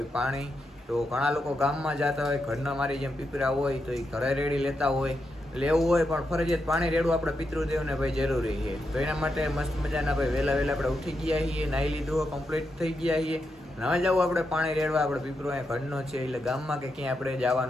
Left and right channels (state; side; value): normal; both; correlation 0.85